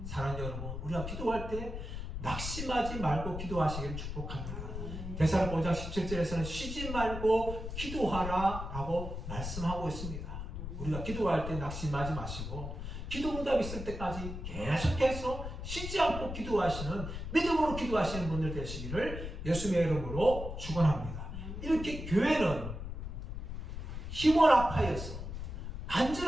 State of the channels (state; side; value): noise; left; rumble, 6 dB below the sound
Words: 사랑하는 여러분, 우리가 기도할 때 낙심하지 말고 기도하시기를 축복합니다. 데살로니가 5장 17절에서는 쉬지 말고 기도하라 라고 말씀하고 있습니다. 우리가 기도할 때 낙심하지 마시고 기도 응답이 있을 때까지 계속해서 쉬지 않고 기도하시는, 믿음으로 기도하시는 분들 되시기를 예수님의 이름으로 축원합니다. 이렇게 교회는 힘을 합하여서